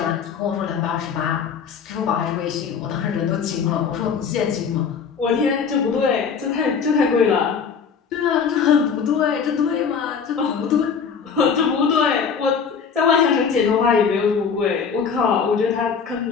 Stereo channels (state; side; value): quieter; right; 6.3 dB